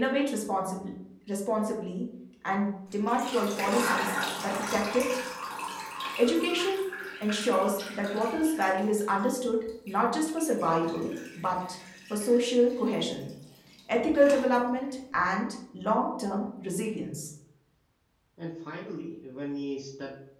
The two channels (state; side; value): identical; both; correlation 1.00